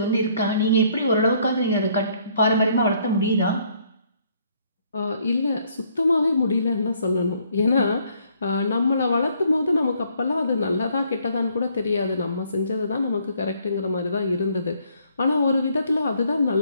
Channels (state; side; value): inverted; both; correlation -0.66